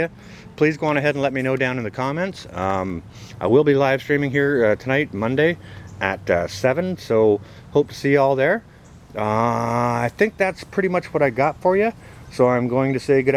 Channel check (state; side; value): identical; both; correlation 1.00